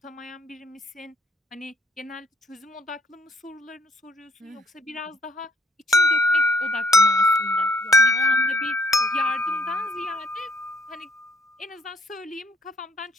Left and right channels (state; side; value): normal; both; correlation 0.66